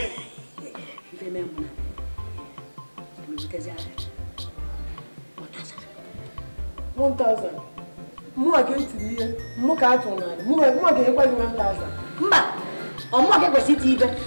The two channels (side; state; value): both; inverted; correlation -1.00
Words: ife mee mụ na emebutezi aka 1000 mụnwa ka etiri ihe mụ ka atụ n'ala mụnwa ga-enyekwa gị 1000 mba ọmụma ka ekwesị iti ibe